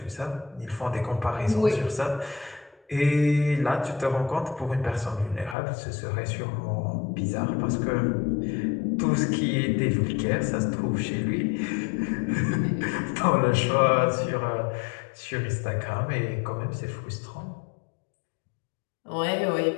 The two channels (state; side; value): drops out; right; at 5.6 s